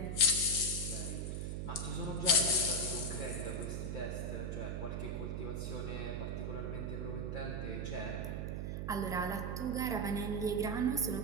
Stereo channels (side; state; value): right; noise; hum, 2 dB below the sound